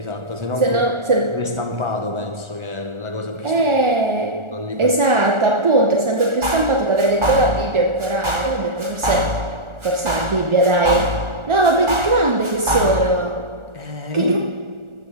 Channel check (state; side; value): late; left; 1.4 ms